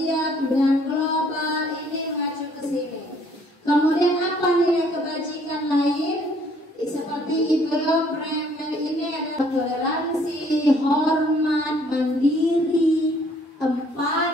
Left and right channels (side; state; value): both; normal; correlation 0.62